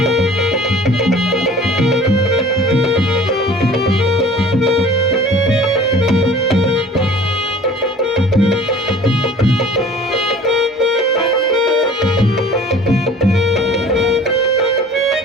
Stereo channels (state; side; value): normal; both; correlation 0.47